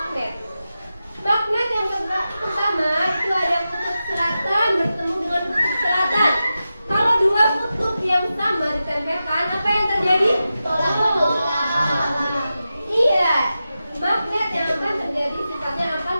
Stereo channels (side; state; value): both; inverted; correlation -0.92